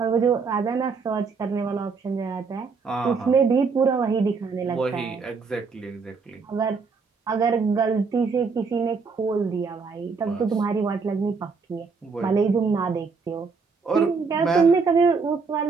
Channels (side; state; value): left; quieter; 4.9 dB